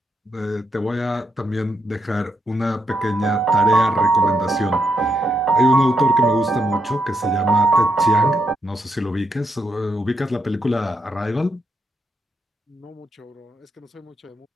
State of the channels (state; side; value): normal; both; correlation 0.80